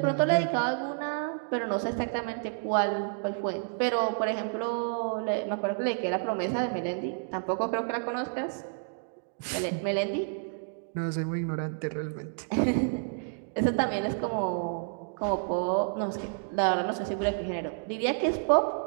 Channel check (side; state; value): left; silent; digital silence